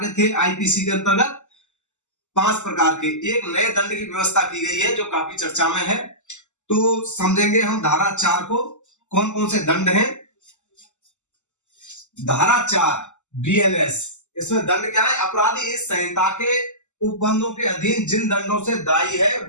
थे आईपीसी के अंतर्गत? 5 प्रकार के। एक नए दंड की व्यवस्था की गई है जो काफी चर्चा में है। तो समझेंगे हम धारा 4 को, कौन कौन से दंड हैं। धारा 4 बीएनएस, इसमें दंड क्या है? अपराधी इस संहिता के उपबंधों के अधीन जिन दंडों से दायी है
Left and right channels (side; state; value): right; late; 0.84 ms